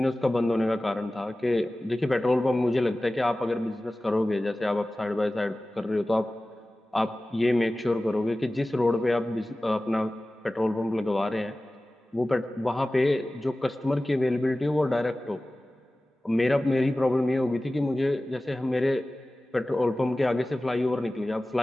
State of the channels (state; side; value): normal; both; correlation 0.97